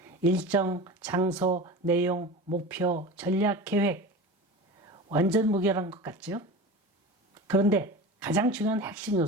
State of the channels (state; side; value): normal; both; correlation 0.31